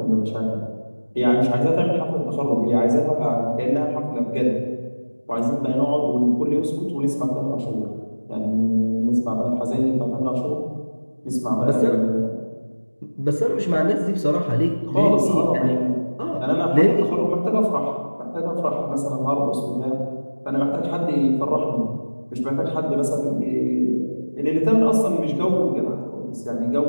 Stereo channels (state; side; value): inverted; both; correlation -1.00